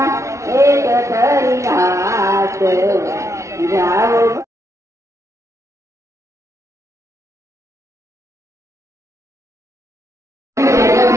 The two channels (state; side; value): late; left; 0.14 ms